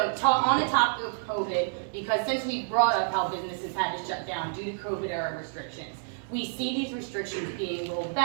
on the topic of COVID, because since we brought up how businesses had to shut down due to COVID era restrictions, we see these restrictions being rolled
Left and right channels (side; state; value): left; silent; digital silence